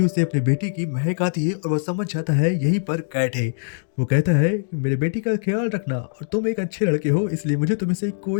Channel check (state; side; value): silent; right; digital silence